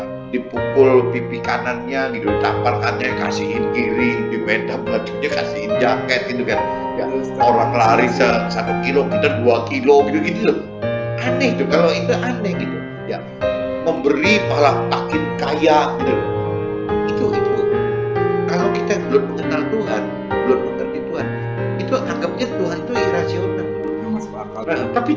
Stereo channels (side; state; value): both; identical; correlation 1.00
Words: dipukul pipi kanannya gitu, tampalkannya kasihin kiri, di meja bajunya kasihin jaket gitu kan. Ya, orang lari 1 kilo kita 2 kilo gitu loh. Aneh tuh, kalau itu aneh gitu ya, memberi malah makin kaya gitu loh. Itu kalau kita belum mengenal Tuhan, belum mengerti Tuhan, itu anggapnya Tuhan itu irasional. Nah, tapi